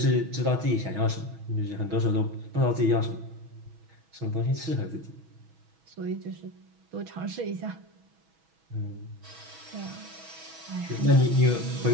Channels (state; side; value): late; left; 6.2 ms